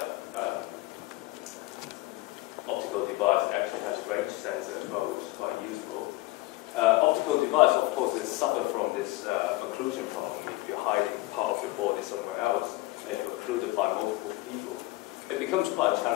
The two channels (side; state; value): right; quieter; 19.4 dB